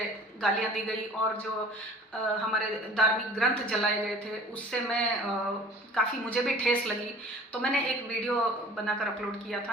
गालियाँ दी गई और जो हमारे धार्मिक ग्रंथ जलाए गए थे उससे मैं काफ़ी मुझे भी ठेस लगी। तो मैंने एक वीडियो बनाकर अपलोड किया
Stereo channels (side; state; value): both; normal; correlation 0.47